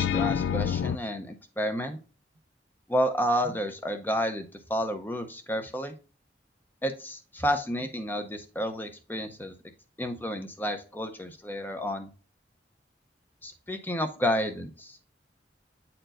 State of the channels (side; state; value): both; normal; correlation 0.61